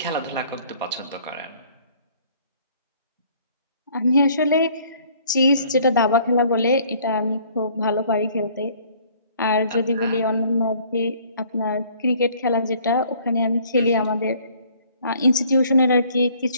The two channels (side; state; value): both; inverted; correlation -0.58